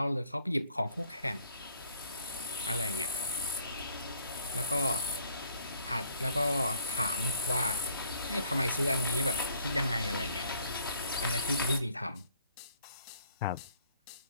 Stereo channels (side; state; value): both; inverted; correlation -0.64